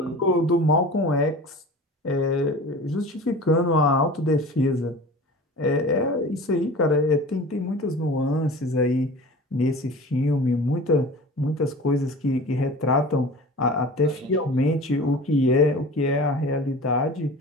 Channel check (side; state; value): both; normal; correlation 0.38